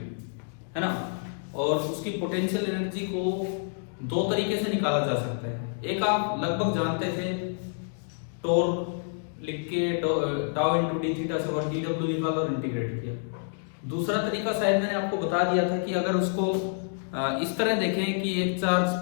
है ना। और उसकी पोटेंशियल एनर्जी को दो तरीके से निकाला जा सकता है। एक आप लगभग जानते थे, टॉर्क लिख के टाउ इनटू डी थीटा से और dw निकाला और इंटीग्रेट किया। दूसरा तरीका शायद मैंने आपको बता दिया था कि अगर उसको इस तरह देखें कि एक चार्ज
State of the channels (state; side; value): silent; right; digital silence